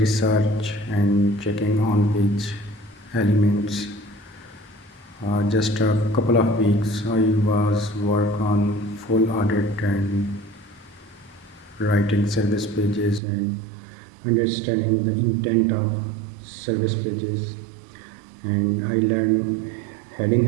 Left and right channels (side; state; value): left; drops out; at 13.2 s